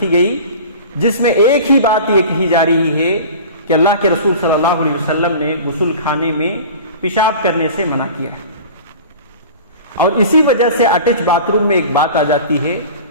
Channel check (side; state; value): both; inverted; correlation -0.38